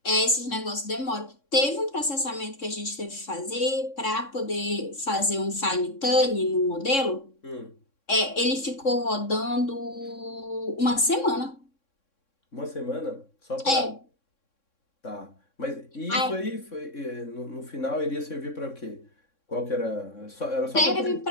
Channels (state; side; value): late; right; 3.6 ms